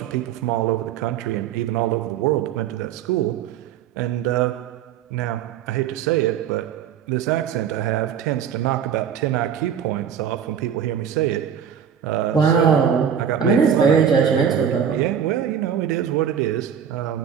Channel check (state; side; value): quieter; left; 8.3 dB